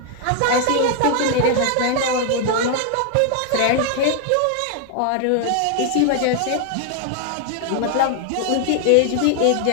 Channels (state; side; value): different; both; correlation 0.00